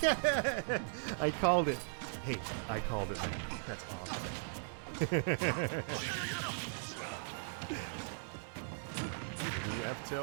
I called it. Hey, I called it, man. That's awesome. New F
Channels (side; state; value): left; silent; digital silence